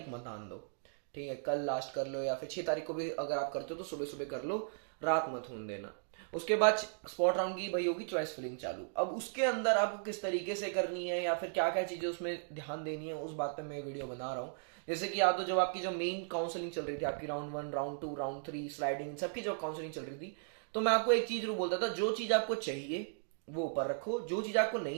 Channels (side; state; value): left; silent; digital silence